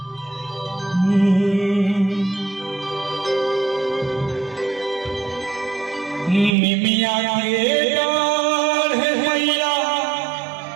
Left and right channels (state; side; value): drops out; left; at 6.5 s